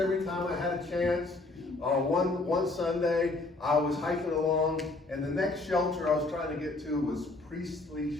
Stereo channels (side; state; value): right; quieter; 3.1 dB